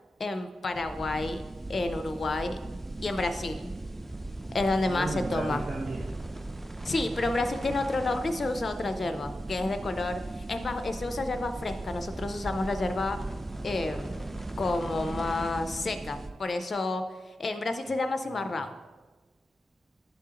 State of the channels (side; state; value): both; normal; correlation 0.91